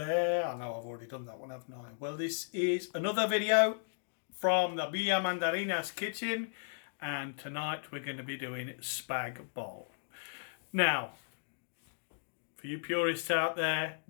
I know I've already done that one, haven't I? Well, this is another video from the Villa Mandarinas kitchen, and tonight we're going to be doing Spag Bol. Now, for you purists out there,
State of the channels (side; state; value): right; silent; digital silence